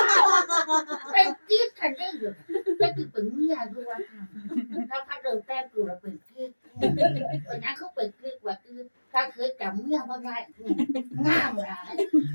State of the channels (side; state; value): both; inverted; correlation -1.00